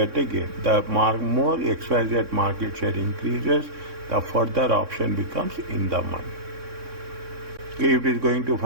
a gain. The more XYZ market share increases, the further option becomes in the money. Okay, if it is going to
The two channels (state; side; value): late; left; 3.6 ms